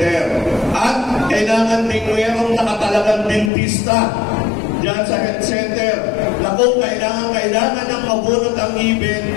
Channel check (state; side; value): drops out; right; at 3.5 s